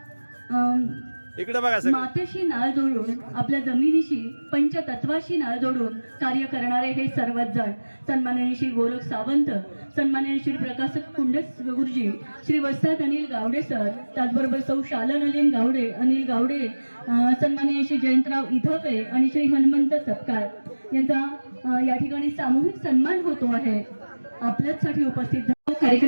इकडे बघा सगळे. मातेशी नाळ जोडून आपल्या जमिनीशी पंचतत्वाशी नाळ जोडून कार्य करणारे हे सर्वच जण सन्माननीय श्री गोरख सावंत, सन्माननीय श्री प्रकाश कुंडस गुरुजी, श्री वस्ताद अनिल गावडे सर, त्याचबरोबर सौ शालन अनिल गावडे, सन्माननीय श्री जयंतराव इधपे आणि श्री हनुमंत सपकाळ यांचा या ठिकाणी सामूहिक सन्मान होतो आहे. आपल्यासाठी उपस्थित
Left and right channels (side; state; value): both; inverted; correlation -1.00